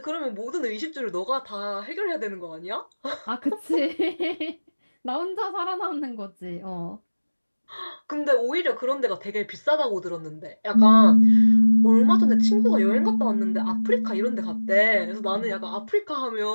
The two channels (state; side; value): inverted; both; correlation -1.00